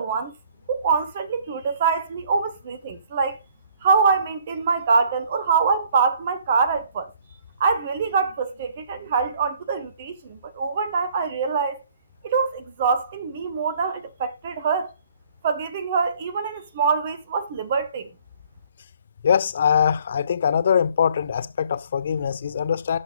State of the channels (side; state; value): both; inverted; correlation -0.60